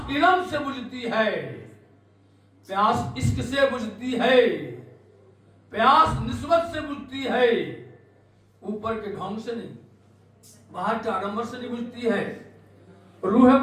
इल्म से बुझती है, प्यास इश्क से बुझती है, प्यास निस्बत से बुझती है, ऊपर के ढंग से नहीं, बाहर के आडंबर से नहीं बुझती है। रूह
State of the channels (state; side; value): identical; both; correlation 1.00